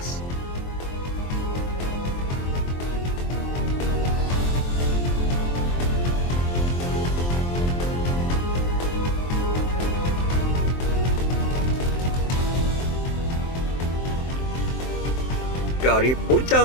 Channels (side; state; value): right; late; 23 ms